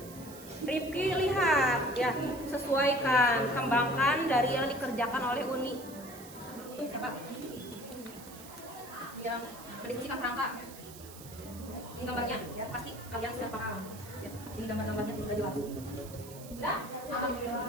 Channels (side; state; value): right; noise; hiss, 17 dB below the sound